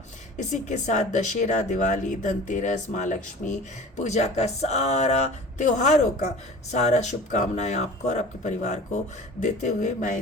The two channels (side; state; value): both; normal; correlation 0.40